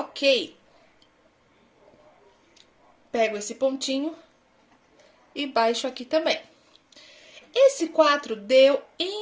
Pego esse pontinho e baixo aqui também. Esse 4 deu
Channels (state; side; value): identical; both; correlation 1.00